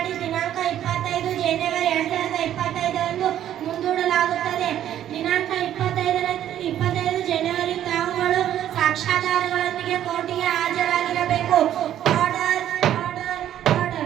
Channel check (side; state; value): left; quieter; 11.3 dB